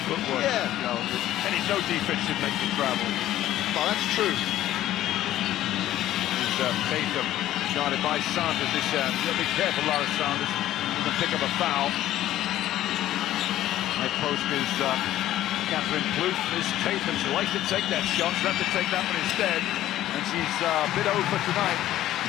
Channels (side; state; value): right; quieter; 13.5 dB